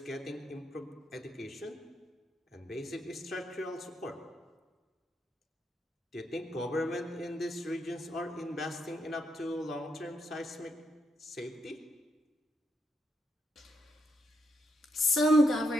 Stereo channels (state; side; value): normal; both; correlation 0.79